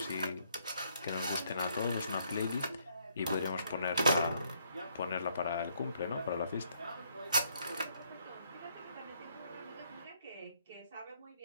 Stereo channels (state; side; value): inverted; both; correlation -0.70